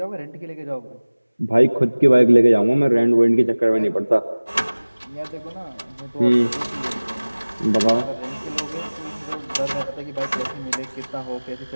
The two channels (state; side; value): inverted; both; correlation -1.00